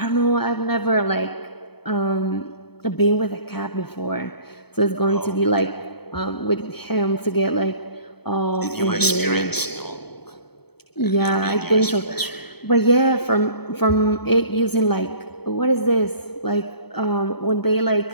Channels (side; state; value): right; late; 0.97 ms